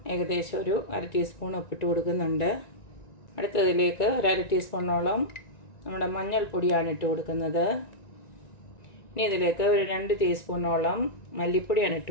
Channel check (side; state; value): right; late; 1.9 ms